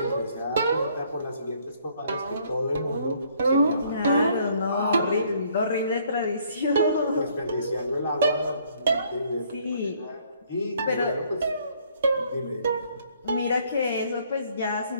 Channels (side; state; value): both; inverted; correlation -0.64